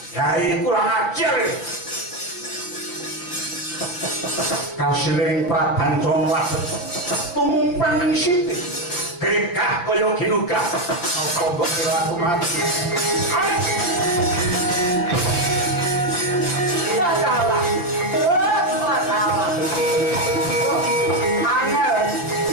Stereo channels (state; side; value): late; right; 5.8 ms